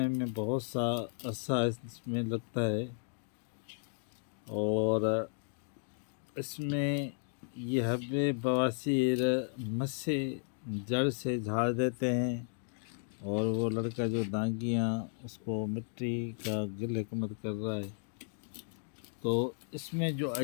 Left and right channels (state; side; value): silent; right; digital silence